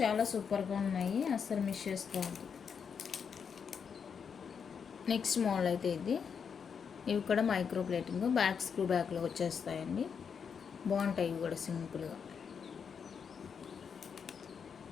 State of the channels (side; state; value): right; quieter; 6.6 dB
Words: సూపర్గా ఉన్నాయి, అస్సలు మిస్ చేసుకోవద్దు. నెక్స్ట్ మోడల్ అయితే ఇది, ఇవి కూడా మైక్రో ప్లేటింగ్, బ్యాక్ స్క్రూ బ్యాక్లో వచ్చేస్తాయండి, బాగుంటాయి ఇవి కూడా సింపుల్గా.